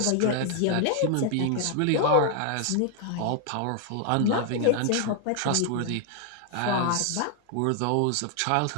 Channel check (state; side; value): different; both; correlation 0.00